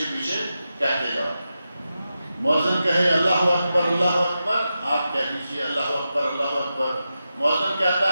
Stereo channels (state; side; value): inverted; both; correlation -0.90